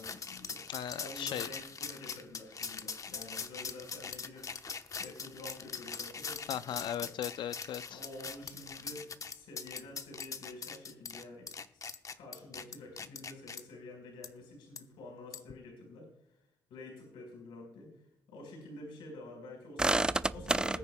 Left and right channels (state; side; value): normal; both; correlation 0.45